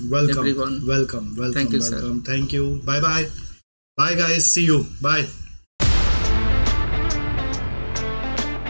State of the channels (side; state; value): both; inverted; correlation -1.00